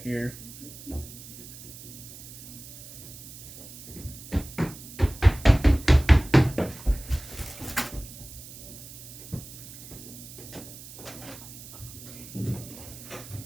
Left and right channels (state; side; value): noise; right; hiss, 15 dB below the sound